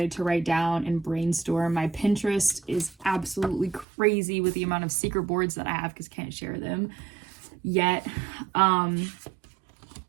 to write down and brainstorm. My Pinterest is absolutely crazy with the amount of secret boards that I have because I can't share them yet. But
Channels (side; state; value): left; drops out; at 3.9 s